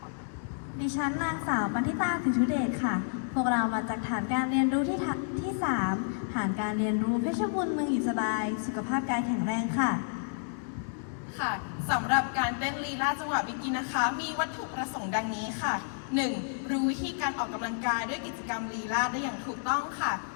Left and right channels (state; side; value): silent; right; digital silence